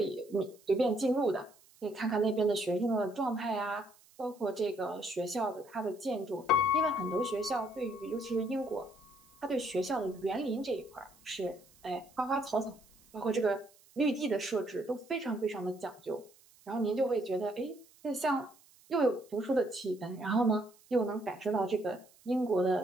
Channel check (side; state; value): right; noise; hiss, 28 dB below the sound